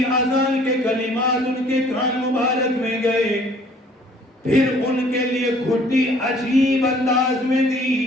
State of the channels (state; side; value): normal; both; correlation 0.56